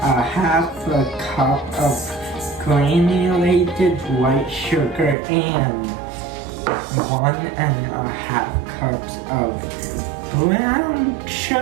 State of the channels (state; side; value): drops out; left; at 5.2 s